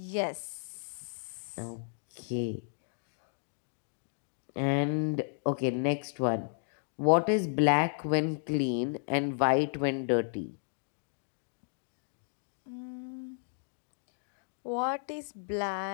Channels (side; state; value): right; silent; digital silence